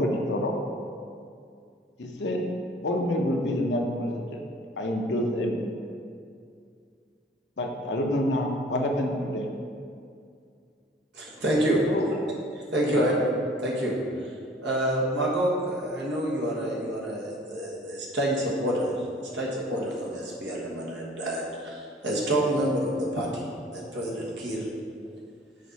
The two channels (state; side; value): normal; both; correlation 0.50